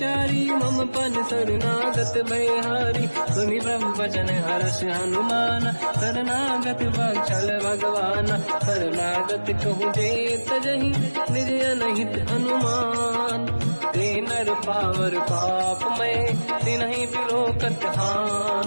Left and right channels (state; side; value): inverted; both; correlation -1.00